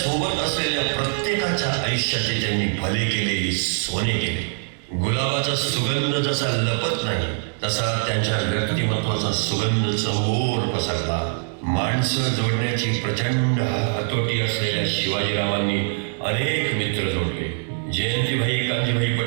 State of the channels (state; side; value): silent; left; digital silence